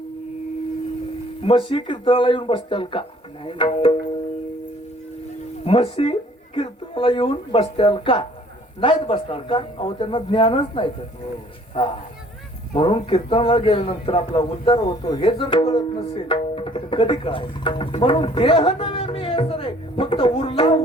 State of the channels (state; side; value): normal; both; correlation 0.56